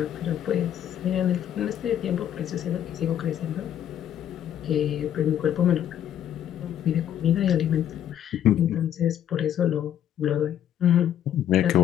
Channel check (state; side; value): quieter; right; 10.4 dB